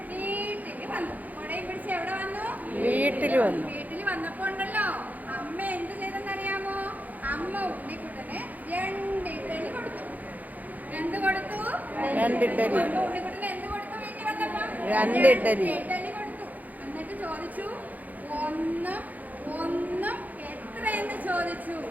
വീട്ടിൽ വന്നു. കൊടയും പിടിച്ച് എവിടെ വന്നു? വീട്ടിൽ വന്നു. വീട്ടിൽ വന്നപ്പോ ഉണ്ടല്ലോ, അമ്മ എന്ത് ചെയ്തെന്നറിയാമോ? അമ്മ ഉണ്ണിക്കുട്ടന് 2 ഇഡ്ഡലി കൊടുത്തു. എന്ത് കൊടുത്തു? 2 ഇഡ്ഡലി. ഉണ്ണിക്കുട്ടന് എന്ത് കൊടുത്തു? വീട്ടിൽ വന്നപ്പോ 2 ഇഡ്ഡലി കൊടുത്തു. എന്നിട്ട് ചോദിച്ചു, ഒന്നും എത്രയെന്ന് ചോദിച്ചു.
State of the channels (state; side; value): late; left; 0.080 ms